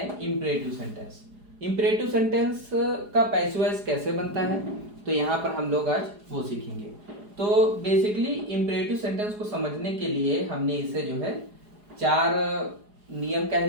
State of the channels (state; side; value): late; left; 4.8 ms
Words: इंपरेटिव सेंटेंस। इंपरेटिव सेंटेंस का पैसिव वॉइस कैसे बनता है तो यहाँ पर हम लोग आज वो सीखेंगे। तो बेसिकली इंपरेटिव सेंटेंस को समझने के लिए हमने इसे जो है 4 नियम कह